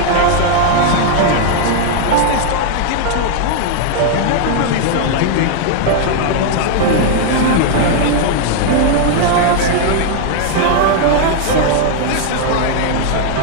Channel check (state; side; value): different; both; correlation 0.00